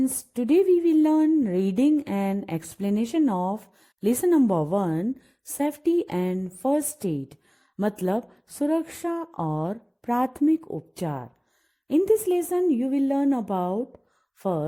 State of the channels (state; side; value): identical; both; correlation 1.00